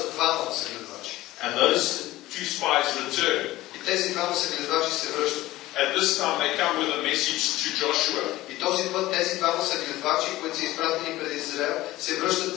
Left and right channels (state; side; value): quieter; right; 17.0 dB